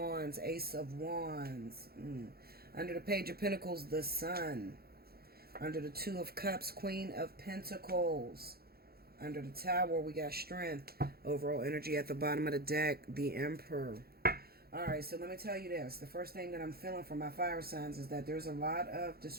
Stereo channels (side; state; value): left; late; 0.45 ms